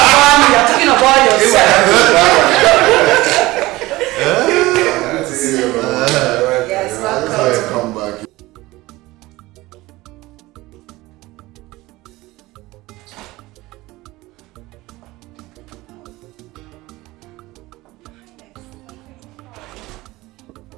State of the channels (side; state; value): left; quieter; 19.4 dB